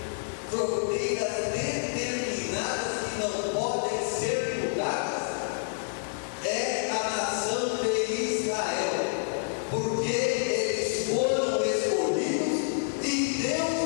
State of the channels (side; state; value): right; silent; digital silence